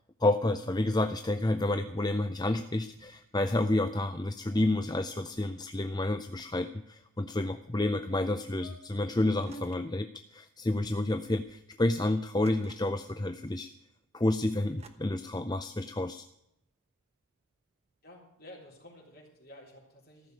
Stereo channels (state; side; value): normal; both; correlation 0.79